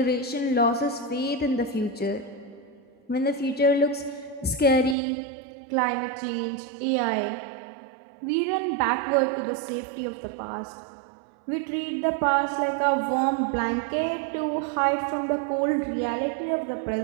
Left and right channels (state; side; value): drops out; left; at 5.0 s